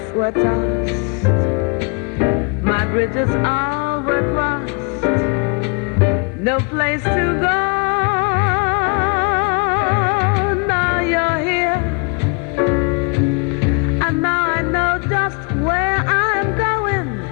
were tossed. My bridges all were crossed. No place to go. Now you're here, and now I know just where I'm going.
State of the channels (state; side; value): quieter; right; 32.5 dB